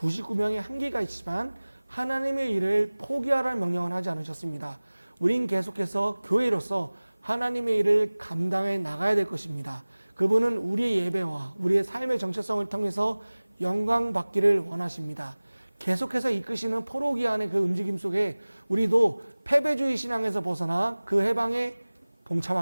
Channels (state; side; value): inverted; both; correlation -1.00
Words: 한계가 있지만 하나님의 일을 포기하라는 명령을 하지 않으셨습니다. 우린 계속해서 교회로서 하나님의 일을 감당해 나가야 될 것입니다. 그분은 우리의 예배와 우리의 삶의 정체성을 통해서 영광 받기를 원하십니다. 계속해서 이끄시는 포로기한의 그 움직임 속에 우리도 패배주의 신앙에서 벗어나 그 해방에